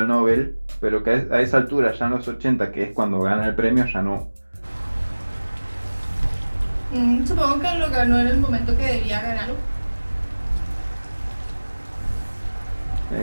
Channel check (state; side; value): inverted; both; correlation -1.00